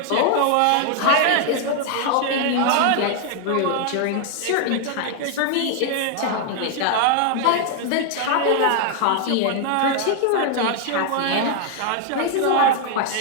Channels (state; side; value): different; both; correlation 0.00